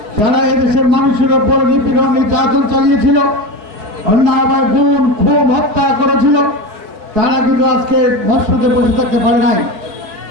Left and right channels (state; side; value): late; left; 4.9 ms